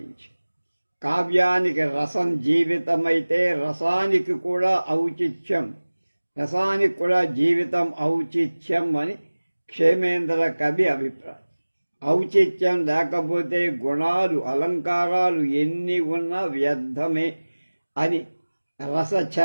కావ్యానికి రసం జీవితమైతే రసానికి కూడా ఔచిత్యం, రసానికి కూడా జీవితం ఔచిత్యం అని క్షేమేంద్ర కవి అభిప్రాయం. ఔచిత్యం లేకపోతే గుణాలు అలంకారాలు ఎన్ని ఉన్నా వ్యర్థమే అని,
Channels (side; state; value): both; inverted; correlation -1.00